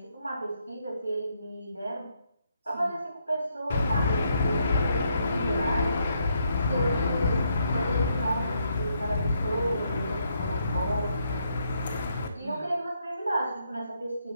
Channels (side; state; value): both; inverted; correlation -0.76